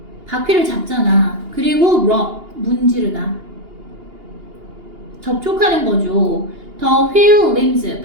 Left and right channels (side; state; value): left; late; 2.8 ms